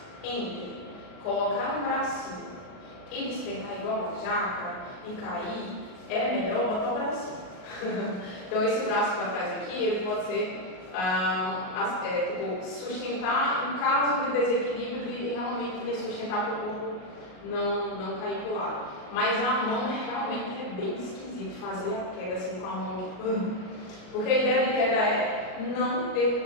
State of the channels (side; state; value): right; late; 38 ms